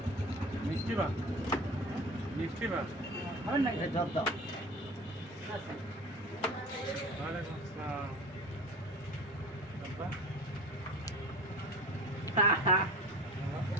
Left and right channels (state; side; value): normal; both; correlation 0.36